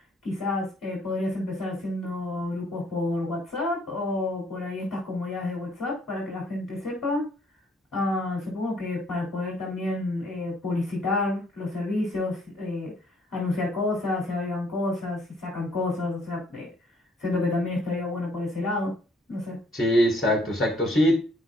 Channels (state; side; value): normal; both; correlation 0.64